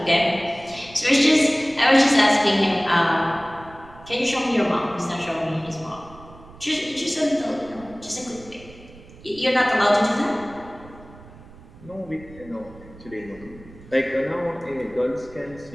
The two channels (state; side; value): noise; right; rumble, 21 dB below the sound